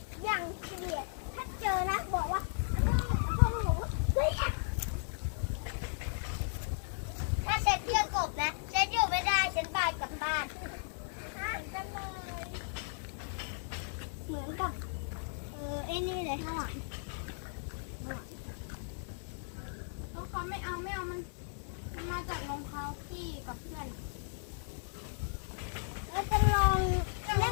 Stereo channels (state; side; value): silent; right; 54 dB below the other